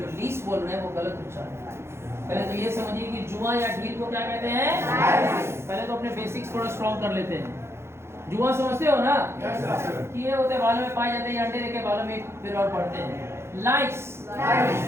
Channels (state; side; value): late; left; 0.12 ms